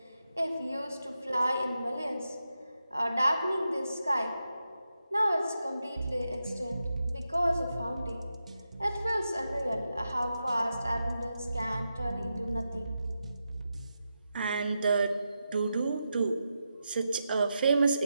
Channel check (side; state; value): both; inverted; correlation -0.88